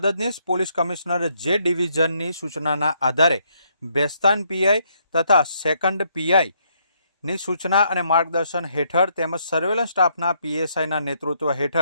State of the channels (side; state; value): both; inverted; correlation -0.72